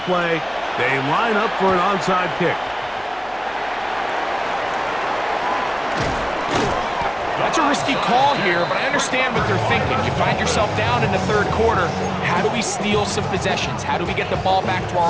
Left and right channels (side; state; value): left; noise; hum, 26 dB below the sound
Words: play, they line up for an onside kick. That's a risky call here, but I understand what they're thinking. You find yourself down in the third quarter. How do we steal some possessions? How do we get the ball back to